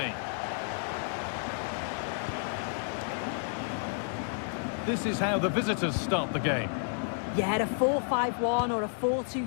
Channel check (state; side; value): silent; right; digital silence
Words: This is how the visitors start the game. Yeah, a 4-5-1 or a